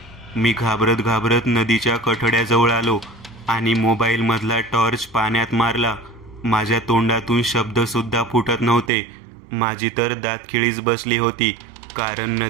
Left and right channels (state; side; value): drops out; left; at 8.9 s